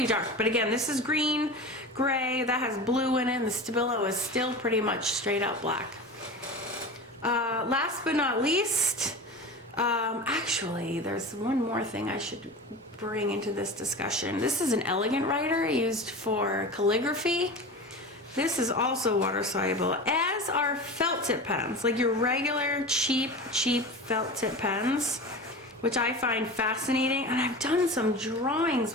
dark, but again, this is green, gray, that has blue in it, and the Stabilo is still pretty much straight up black. Last but not least, actually, there's one more thing I should bring into this discussion. This is an elegant writer used for calligraphy. This is also water-soluble, as are felt tip pens, like your regular cheap felt tip pens, which I find fascinating. And I've done some drawings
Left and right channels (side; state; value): both; normal; correlation 0.31